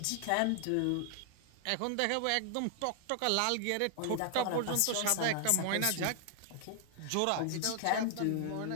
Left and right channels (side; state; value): both; different; correlation 0.00